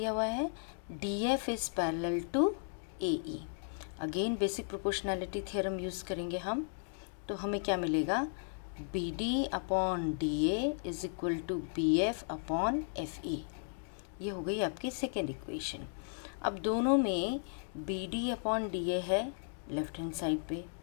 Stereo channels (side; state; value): right; silent; digital silence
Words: हुआ है, DF is parallel to AE. Again basic proportionality theorem use करेंगे हम, तो हमें क्या मिलेगा, BD upon DA is equal to BF upon FE. ये हो गई आपकी सेकेंड इक्वेशन. अब दोनों में BD अपॉन DA है लेफ्ट हैंड साइड पे,